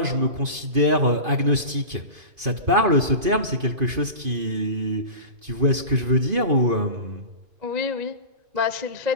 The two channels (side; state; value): left; late; 2.5 ms